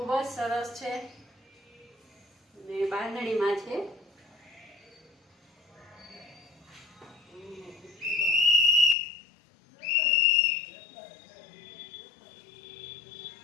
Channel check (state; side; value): drops out; right; at 9.0 s